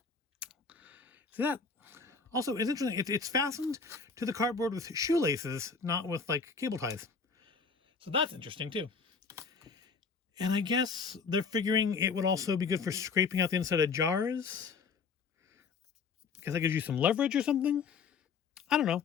See that? Also, it's interesting. It's fastened to the cardboard with shoelaces, not with like cable ties. So that's interesting too. And I guess they're figuring it would also be good for scraping out the inside of jars. Because that gives you some leverage or something. I don't know.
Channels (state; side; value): quieter; right; 5.2 dB